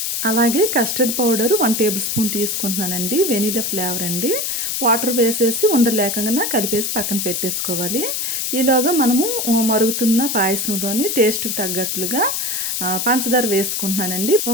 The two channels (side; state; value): left; noise; hiss, 1 dB below the sound